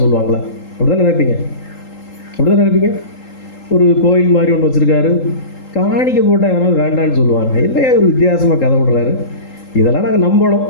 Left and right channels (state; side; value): late; right; 3.8 ms